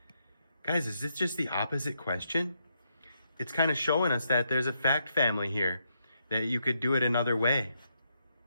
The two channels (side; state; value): both; inverted; correlation -0.79